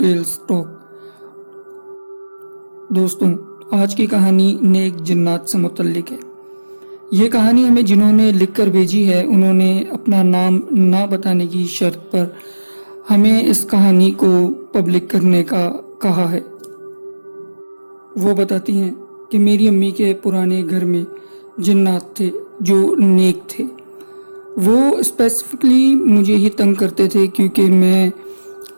Talk. दोस्तों, आज की कहानी नेक जिन्नात से मुतल्लिक है। ये कहानी हमें जिन्होंने लिख कर भेजी है, उन्होंने अपना नाम ना बताने की शर्त पर हमें इस कहानी को पब्लिक करने का कहा है। वो बताती हैं कि मेरी अम्मी के पुराने घर में जिन्नात थे जो नेक थे। वो स्पेसिफिकली मुझे ही तंग करते थे क्योंकि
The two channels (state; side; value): inverted; both; correlation -1.00